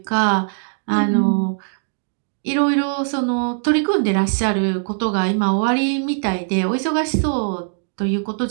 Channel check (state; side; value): silent; left; digital silence